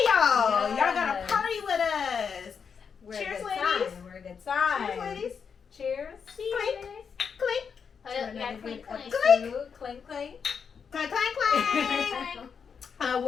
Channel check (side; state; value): right; quieter; 6.4 dB